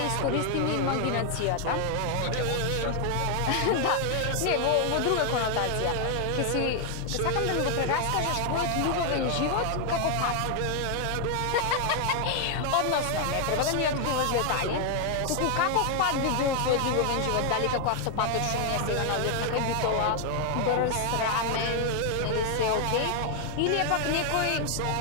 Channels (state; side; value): different; both; correlation 0.00